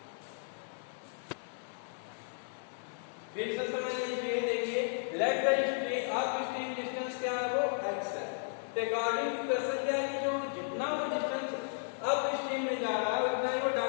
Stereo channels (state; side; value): silent; right; digital silence